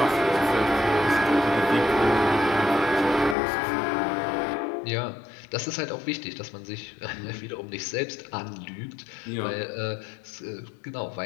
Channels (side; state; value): right; drops out; at 3.4 s